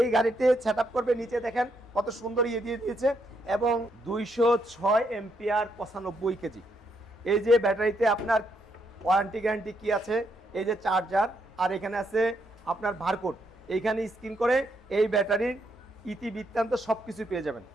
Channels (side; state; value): both; normal; correlation 0.76